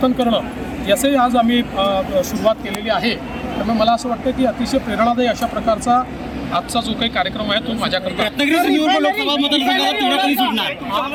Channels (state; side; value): identical; both; correlation 1.00